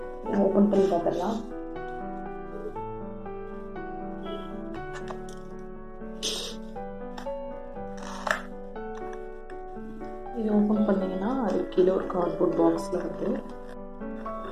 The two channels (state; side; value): identical; both; correlation 1.00